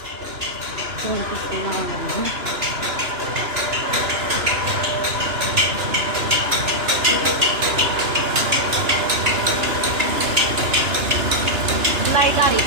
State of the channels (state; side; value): late; left; 2.9 ms